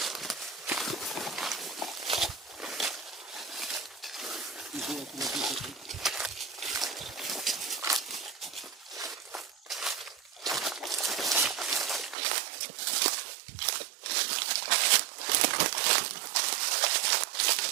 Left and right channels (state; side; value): drops out; left; at 12.2 s